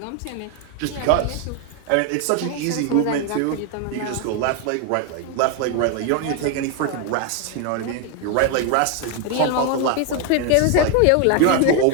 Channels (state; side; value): different; both; correlation 0.01